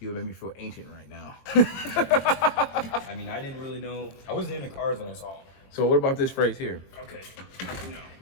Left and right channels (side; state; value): right; late; 22 ms